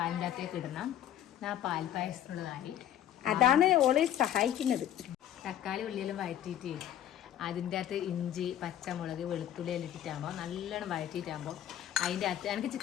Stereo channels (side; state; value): right; quieter; 11.3 dB